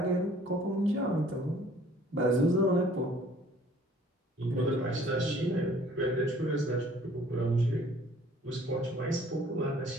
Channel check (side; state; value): both; normal; correlation 0.55